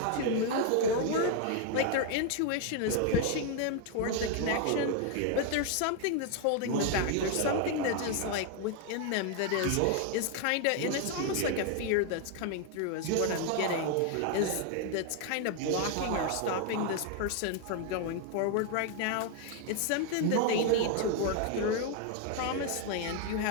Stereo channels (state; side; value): different; both; correlation 0.01